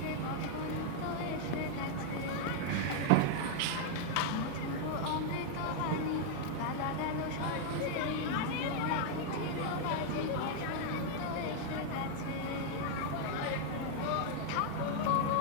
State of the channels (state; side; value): different; both; correlation 0.00